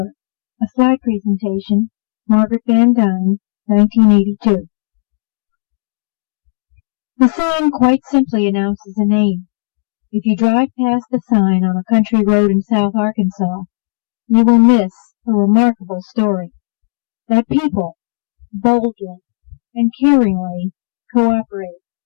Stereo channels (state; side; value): silent; right; digital silence